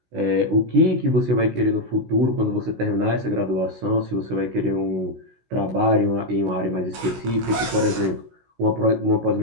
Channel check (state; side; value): late; left; 16 ms